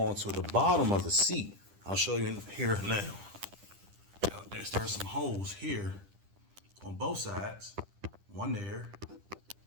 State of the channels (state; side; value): late; left; 10 ms